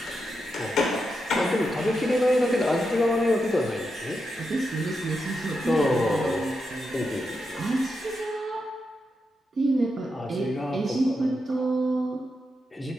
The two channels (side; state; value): both; normal; correlation 0.86